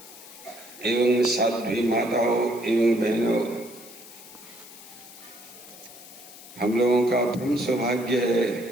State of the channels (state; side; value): noise; left; hiss, 18 dB below the sound